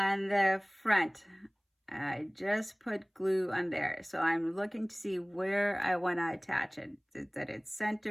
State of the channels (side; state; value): both; identical; correlation 1.00